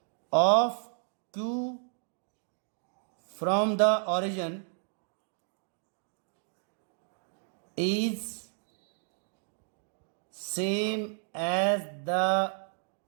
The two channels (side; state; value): left; silent; 56 dB below the other